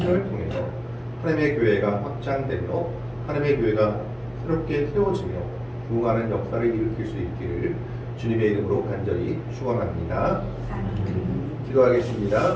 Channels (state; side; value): identical; both; correlation 1.00